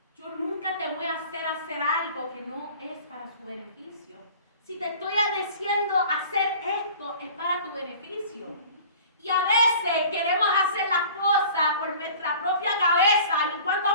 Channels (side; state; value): both; inverted; correlation -0.45